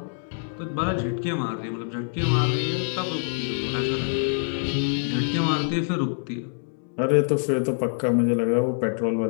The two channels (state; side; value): silent; right; digital silence